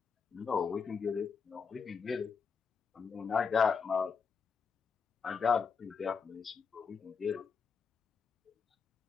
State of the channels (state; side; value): quieter; right; 5.8 dB